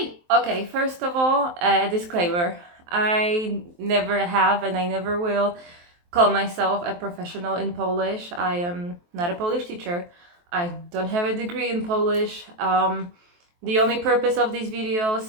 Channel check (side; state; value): left; late; 23 ms